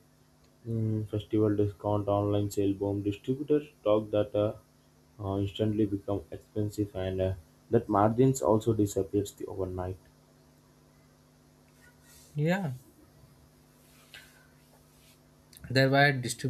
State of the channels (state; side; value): identical; both; correlation 1.00